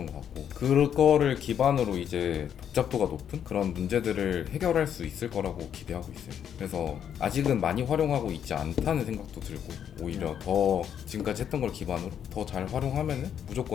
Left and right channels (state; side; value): quieter; right; 8.9 dB